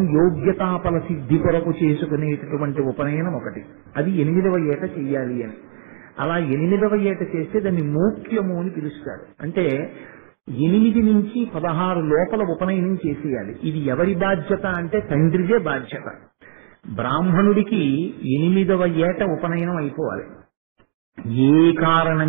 యోగ్యతాపల సిద్ధి కొరకు చేసుకునేటటువంటి ఉపనయనం ఒకటి. అది 8వ ఏట చెయ్యాలి అని. అలా 8వ ఏట చేస్తే దాన్ని మోక్యము అని పిలుస్తారు. అంటే 8 నుంచి 16 లోపల ఉపనయనం చేసేయాలి. ఇది ఎవరి బాధ్యత అంటే తండ్రిదే బాధ్యత. బ్రాహ్మణుడికి 8వ ఏట ఉపనయనం అయిపోవాలి. ఏ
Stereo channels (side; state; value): left; silent; 66 dB below the other